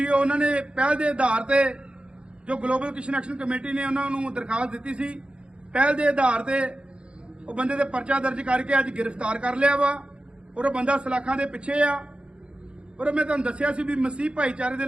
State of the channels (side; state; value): left; late; 0.056 ms